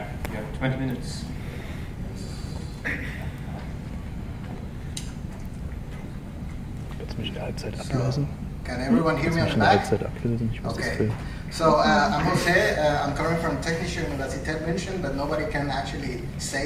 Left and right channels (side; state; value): both; identical; correlation 1.00